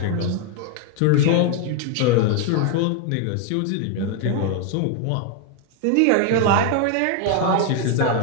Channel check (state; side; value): different; both; correlation 0.00